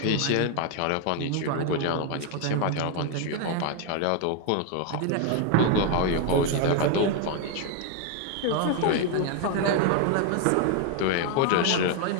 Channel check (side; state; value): both; different; correlation 0.01